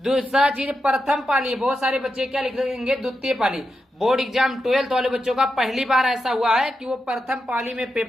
चीज, प्रथम पाली। बहुत सारे बच्चे क्या लिख देंगे, द्वितीय पाली। बोर्ड एग्जाम 12th वाले बच्चों का पहली बार ऐसा हुआ है कि वो प्रथम पाली में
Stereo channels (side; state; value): both; normal; correlation 0.87